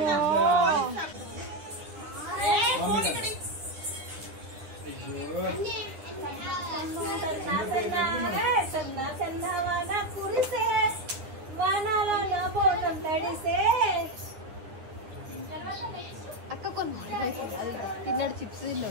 చందవాన కురిసే వానాల నా బోనం తడిసే అక్క తిన్నాడు చిప్స్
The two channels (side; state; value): left; late; 9.7 ms